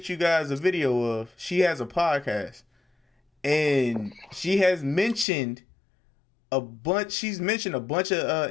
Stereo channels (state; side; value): drops out; right; at 5.2 s